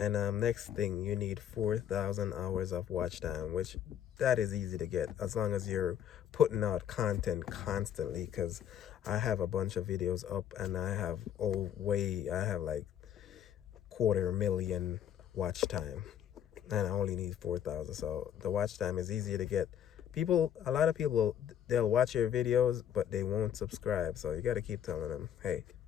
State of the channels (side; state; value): right; quieter; 9.9 dB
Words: next thing, you need 4,000 hours of watch time, which that is easy to get as long as you're putting out content constantly. Because I have a bunch of videos up, and I have I have like 250,000 watch time, and I only need 4,000. So the watch time is easier to get. A lot of people, they'll watch your videos, but they won't subscribe. So you got to keep telling them, hey,